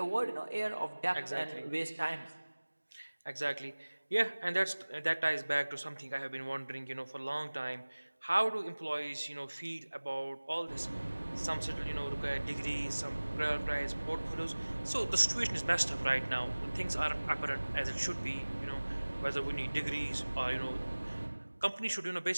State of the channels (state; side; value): inverted; both; correlation -1.00